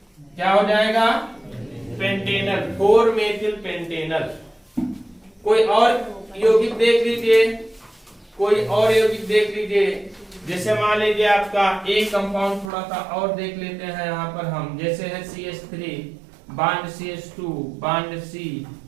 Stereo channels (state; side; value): drops out; left; at 12.7 s